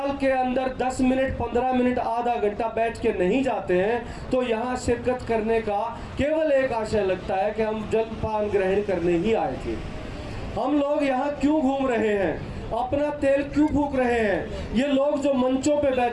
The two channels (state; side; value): identical; both; correlation 1.00